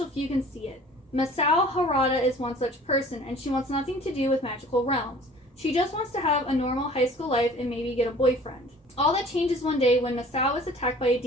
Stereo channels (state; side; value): normal; both; correlation 0.49